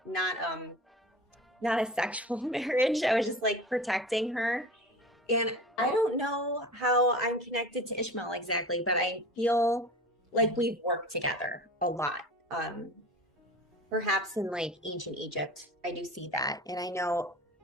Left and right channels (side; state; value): both; normal; correlation 0.36